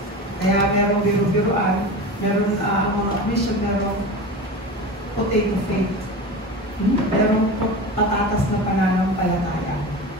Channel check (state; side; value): normal; both; correlation 0.29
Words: Kaya merong biro-biroan, meron mga mission, merong potato faith. Merong patatas na pananampalataya.